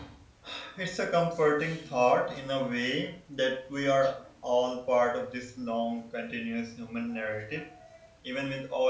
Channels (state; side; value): identical; both; correlation 1.00